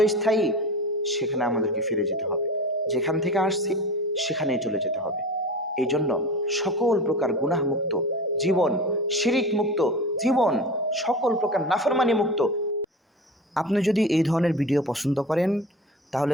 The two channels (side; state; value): both; normal; correlation 0.32